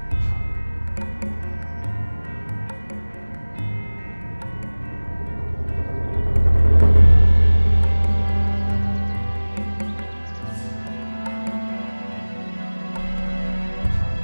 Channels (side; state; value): both; inverted; correlation -1.00